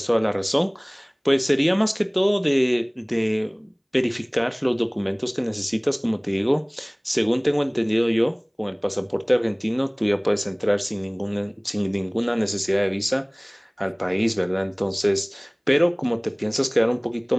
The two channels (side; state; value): both; identical; correlation 1.00